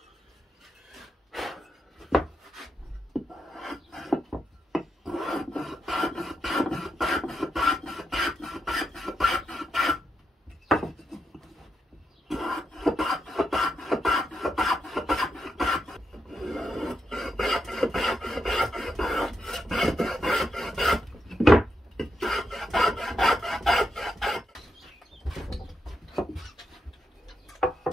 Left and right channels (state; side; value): normal; both; correlation 0.84